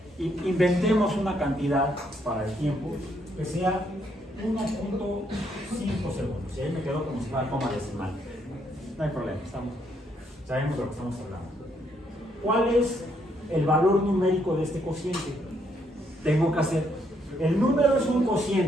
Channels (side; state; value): both; normal; correlation 0.73